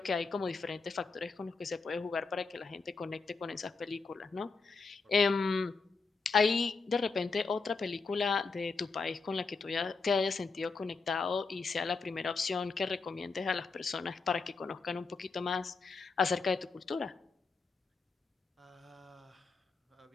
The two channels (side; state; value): right; quieter; 4.4 dB